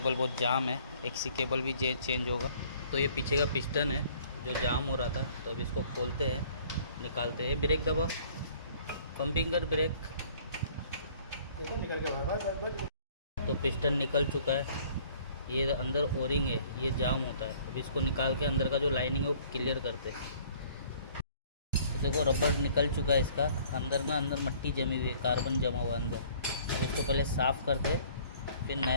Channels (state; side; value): inverted; both; correlation -0.56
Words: बहुत जाम है, एक्सी केबल भी चेंज होगा। तो ये पीछे का पिस्टन है जो जाम हो रहा था, तो अब इसको खोलते हैं, निकालते हैं। ब्रेक दबा, पंपिंग कर, ब्रेक। निकल के तो पिस्टन निकल चुका है। ये अंदर ओरिंग है, ये जाम होता है। अब इसको निकाल के अंदर का जो लाइनिंग है वो क्लियर करते हैं। तो देखो रबर निकल चुका है इसका, अंदर मट्टी जमी हुई है, कार्बन जमा हुआ है अंदर। अब इसको पहले साफ़ करते, फिर